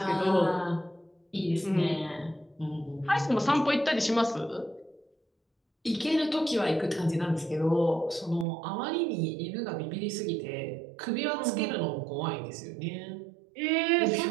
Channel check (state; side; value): drops out; left; at 8.5 s